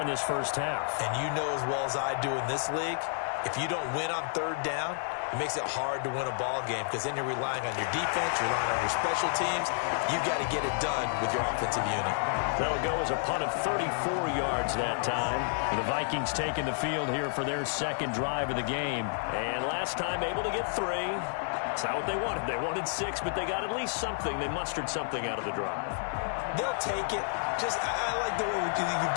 this first half. And you know as well as I do in this league, if you don't win on 3rd down, it makes it hard to win a ball game because then you're relying on your defense, you're relying on your special teams. You've got to get it done with your offensive unit. That'll go as a punt of 34 yards that time. The Vikings taking the field here for their 2nd drive of the game. And last time able to get 3. It's not what they wanted. They wanted 6, but they got at least something. They mustered something out of the drive. They'll take it. I like the way you've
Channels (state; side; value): silent; right; 55 dB below the other